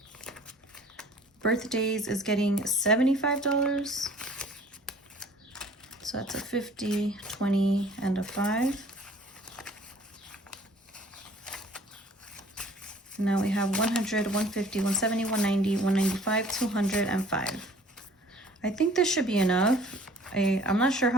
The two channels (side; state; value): both; normal; correlation 0.52